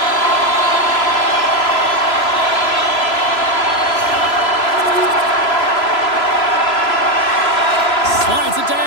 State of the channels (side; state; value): right; late; 3.0 ms